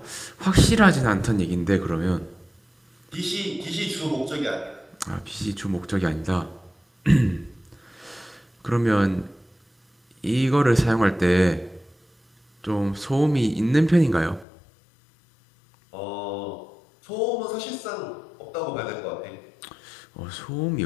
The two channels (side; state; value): right; drops out; at 14.5 s